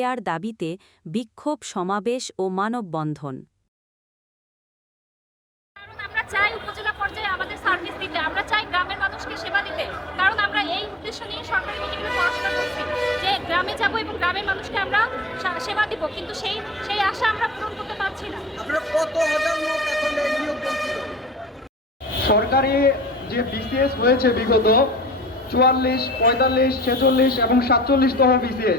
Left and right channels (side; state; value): both; normal; correlation 0.50